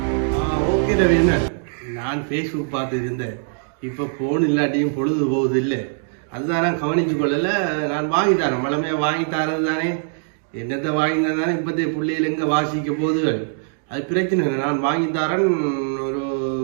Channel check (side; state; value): left; silent; digital silence